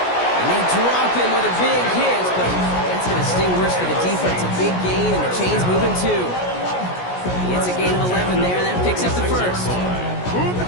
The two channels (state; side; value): late; right; 17 ms